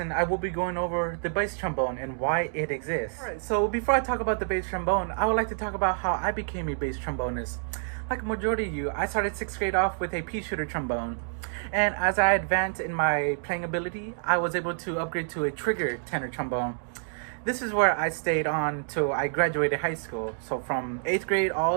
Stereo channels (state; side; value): silent; left; digital silence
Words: I will be going over the bass trombone and why it exists. Alright, so before I talk about the bass trombone, I would like to talk about how I became a bass trombonist. Like a majority of you, I started 6th grade off with a pea shooter trombone. And as I advanced in my playing ability, I was able to upgrade to a trigger tenor trombone. This is where I stayed on till I graduated high school. So from 8th grade